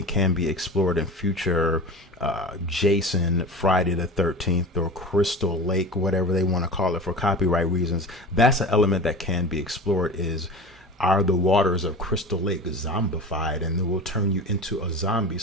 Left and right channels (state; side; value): normal; both; correlation 0.33